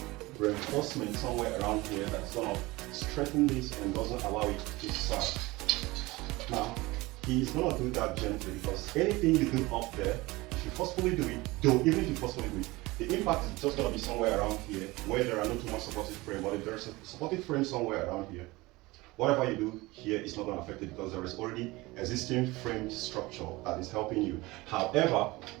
reinforcements somewhere around here that's gonna strengthen this and doesn't allow it to sag. Now, he's gonna do that gently because anything you do up there, if you forcefully do it, though even if you forcefully do it, the impact is just gonna be somewhere around here where there are not too much supportive frame, but if there's a supportive frame somewhere around here, whatever you do here is not gonna affect it because there is already existing frame structure that is helping you. However,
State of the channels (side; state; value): left; quieter; 21.3 dB